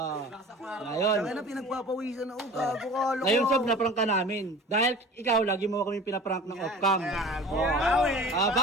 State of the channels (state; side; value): normal; both; correlation 0.41